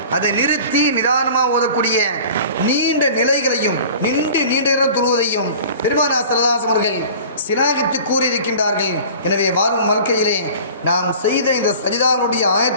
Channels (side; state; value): both; inverted; correlation -0.43